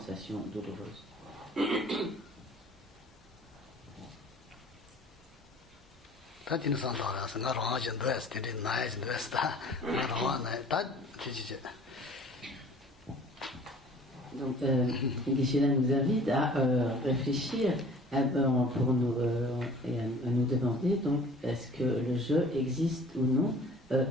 douloureuse. Donc, Geshe-la nous invite à réfléchir pour nous, et à nous demander donc est-ce que le je existe ou non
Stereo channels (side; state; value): both; normal; correlation 0.49